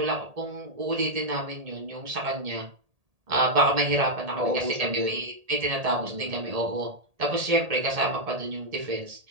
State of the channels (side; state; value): left; late; 1.8 ms